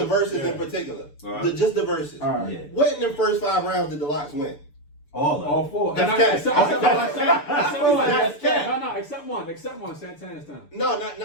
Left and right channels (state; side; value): late; right; 6.9 ms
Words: verses in particular. Just the verses. All right. Yeah. What in the first 5 rounds did the Locks win? All four. That's cap. No, except one. Santana's time. No, not.